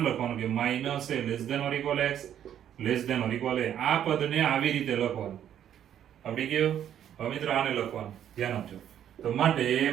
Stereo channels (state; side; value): quieter; left; 10.1 dB